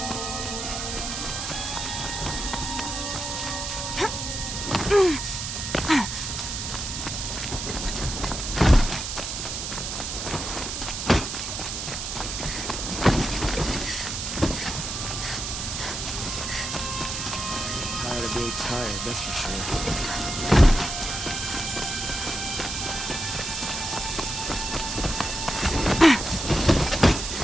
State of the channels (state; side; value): noise; right; hiss, 4 dB below the sound